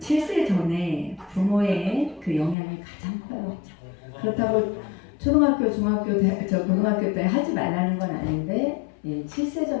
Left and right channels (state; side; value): drops out; right; at 2.6 s